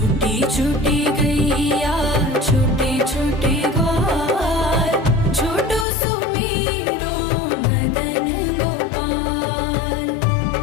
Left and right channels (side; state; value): right; drops out; at 5.9 s